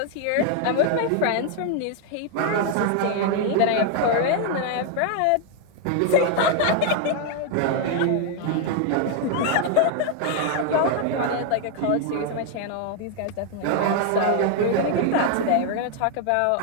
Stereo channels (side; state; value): both; different; correlation 0.00